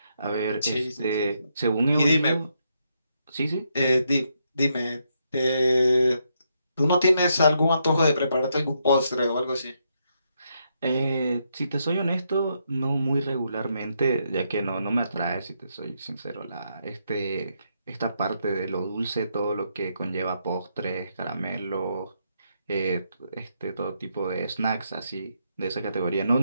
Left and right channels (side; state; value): both; inverted; correlation -0.78